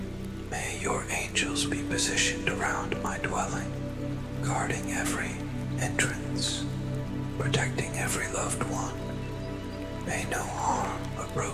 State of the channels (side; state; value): both; identical; correlation 1.00